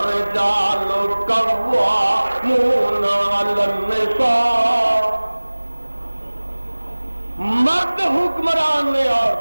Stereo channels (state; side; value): inverted; both; correlation -1.00